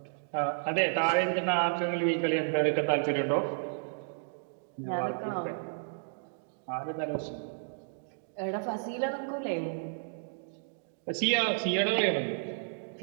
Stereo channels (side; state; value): left; silent; digital silence